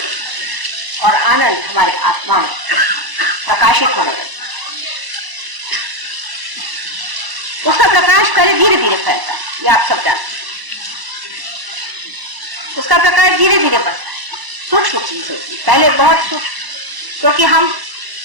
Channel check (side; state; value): left; late; 1.0 ms